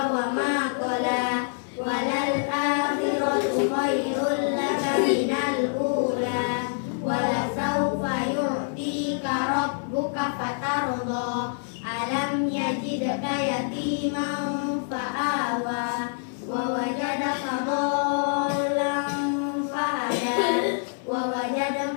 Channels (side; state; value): right; silent; digital silence